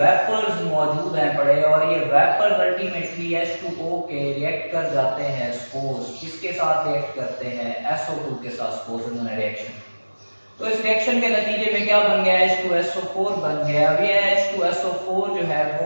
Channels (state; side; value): inverted; both; correlation -1.00